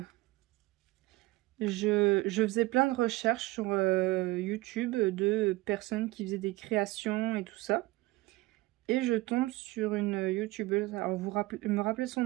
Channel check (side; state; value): left; quieter; 19.8 dB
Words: je faisais plein de recherches sur YouTube de personnes qui faisaient des créations et tout ça. Et je tombe sur une youtubeuse. Alors me rappeler son